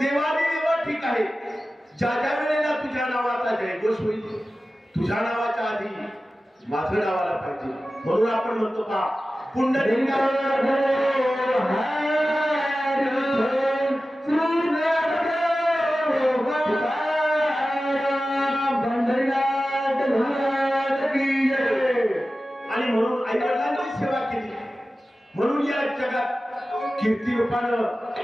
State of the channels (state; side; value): normal; both; correlation 0.95